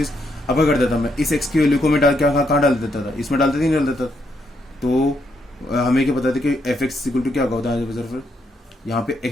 अब क्या कर देता मैं, इस x की वैल्यू को मैं डाल क्या कहाँ डाल देता था, इसमें डालते नहीं डाल देता, तो हमें क्या पता था कि एफ एक्स इक्वल टू क्या होता है, फिर यहाँ पे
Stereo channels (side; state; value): both; normal; correlation 0.77